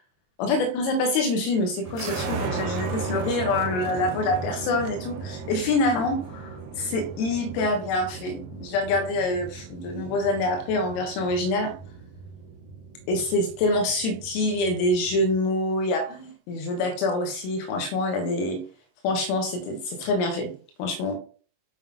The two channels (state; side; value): late; right; 22 ms